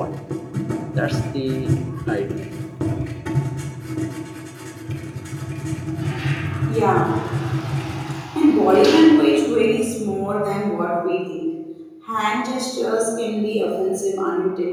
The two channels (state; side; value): identical; both; correlation 1.00